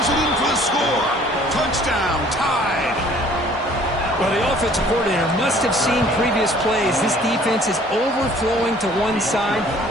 it in for the score. Touchdown, tied. Well, the offensive coordinator must have seen previous plays. This defense is overflowing to one side,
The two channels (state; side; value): normal; both; correlation 0.55